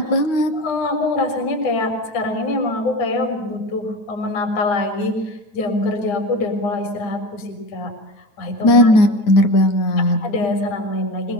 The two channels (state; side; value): late; right; 9.2 ms